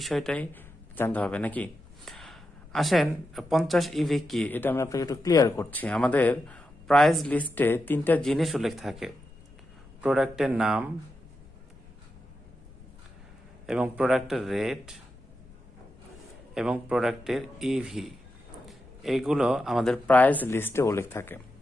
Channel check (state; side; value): noise; left; rumble, 23 dB below the sound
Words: জানতে হবে নাকি। আসেন 50 ইভি কি এটা আমি আপনাকে একটু ক্লিয়ার করছি। আমাদের প্রাইস লিস্টে 3টা জিনিস উল্লেখ থাকে, প্রোডাক্টের নাম এবং প্রোডাক্টের রেট এবং প্রোডাক্টের ইভি, এইগুলো আমাদের প্রাইস লিস্টে উল্লেখ থাকে।